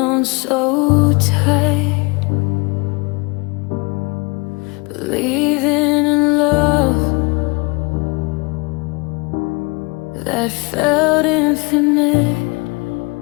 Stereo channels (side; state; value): right; quieter; 28.1 dB